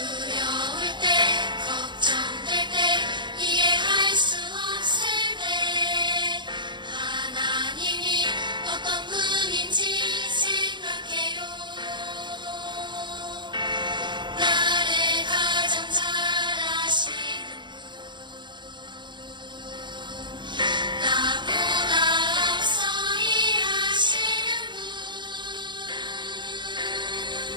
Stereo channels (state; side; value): late; left; 0.22 ms